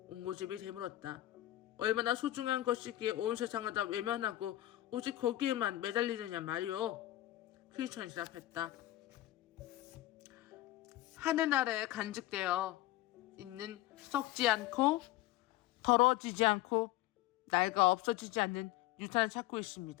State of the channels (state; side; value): quieter; right; 15.8 dB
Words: 옹고집이 되물었다. 얼마나 소중한 것이기에 온 세상을 다 외면하고 오직 거기에만 매달리느냐 말이오. 크리스천이 대답했다. 하늘나라에 간직되어 있는 썩지 않고 더러워지지 않고 낡아 없어지지 않는 유산을 찾고